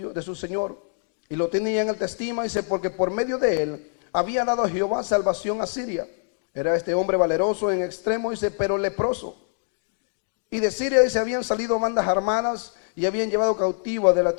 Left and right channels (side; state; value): right; silent; 62 dB below the other